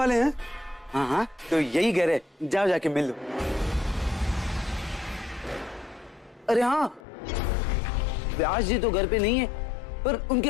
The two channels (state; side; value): drops out; right; at 7.0 s